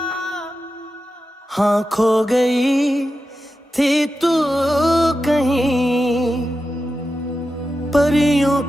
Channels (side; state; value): both; normal; correlation 0.91